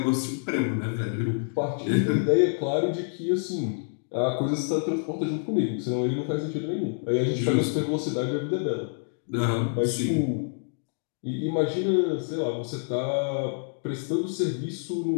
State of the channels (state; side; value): silent; right; digital silence